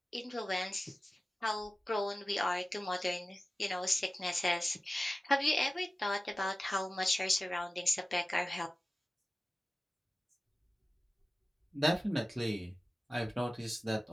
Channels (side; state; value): both; normal; correlation 0.96